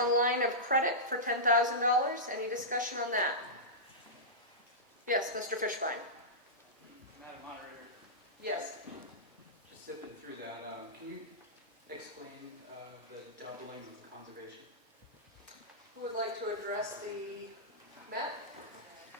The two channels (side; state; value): both; normal; correlation -0.15